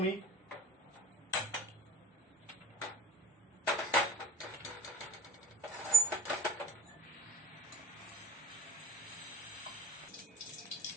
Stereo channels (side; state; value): both; normal; correlation 0.49